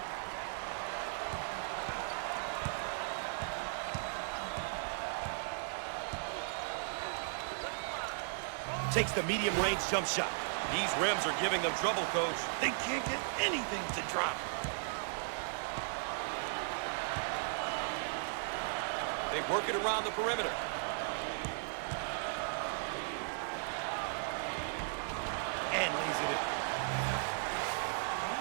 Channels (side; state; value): left; silent; digital silence